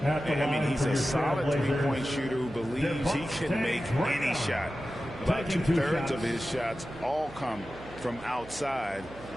I mean, he's a solid three-point shooter who believes he can make any shot. About 2/3 of his shots all come from outside,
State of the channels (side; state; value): right; noise; hum, 18 dB below the sound